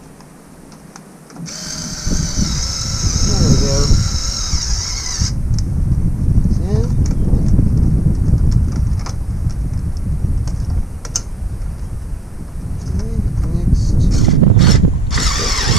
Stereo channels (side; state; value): both; normal; correlation 0.79